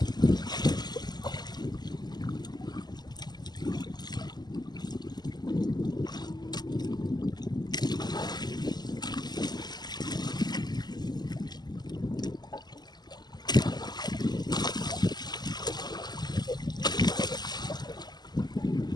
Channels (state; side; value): late; right; 0.20 ms